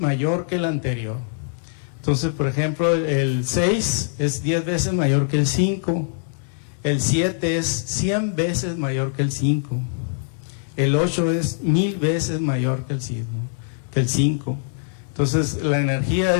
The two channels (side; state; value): right; silent; digital silence